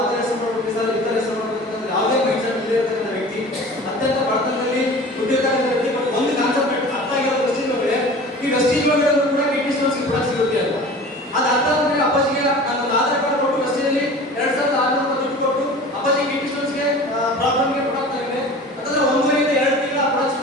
ಥರ ಹೆಸರು ಮಾಡಬೇಕು ಸರ್, ಈ ಥರ ಹೆಸರು ಮಾಡಬೇಕು ಅಂತ ಯಾವುದೇ ಮೈಂಡ್ಸೆಟ್ ಇಲ್ಲದೆ ಇರ್ತಕ್ಕಂಥ ವ್ಯಕ್ತಿ, ಅತ್ಯಂತ ಬಡತನದಲ್ಲಿ ದುಡ್ಡಿರ್ತಕ್ಕಂಥ ವ್ಯಕ್ತಿ. ಬಟ್ ಒಂದು ಕಾನ್ಸೆಪ್ಟ್ ಅರ್ಥ ಆಗಿರೋ ಪ್ರೆಸ್ಟೀಜ್ ಒಳಗಡೆ, ಈ ಪ್ರೆಸ್ಟೀಜ್ ಒಳಗಡೆ ಕೂಡ ಕಿಡ್ನಿ ಸ್ಟೋನ್ಸ್ಗೆ ಕೂಡ ಸಿಗುತ್ತೆ ಅಂತ. ಅದು ಅರ್ಥ ಆದ್ಮೇಲೆ ಅಪ್ಪಾಜಿಗೆ ನಾನು ಆಧಾರ್ ಕಾರ್ಡ್ ಕೊಟ್ಟು ಪ್ರೆಸ್ಟೀಜಲ್ಲಿ 2600 ದುಡ್ಡು ಕೊಟ್ಟು ಅಪ್ಪಾಜಿ ಕಿಡ್ನಿ ಸ್ಟೋನ್ಸ್ಗೆ ಪ್ರಾಬ್ಲಮ್ಗೆ ಕೊಡ್ತಾ ಇದೆ. ಯಾಕಂದ್ರೆ 1 ಇಂದ 2 ತಿಂಗಳ ಪ್ರಾಡಕ್ಟ್ಸ್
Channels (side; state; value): both; normal; correlation 0.40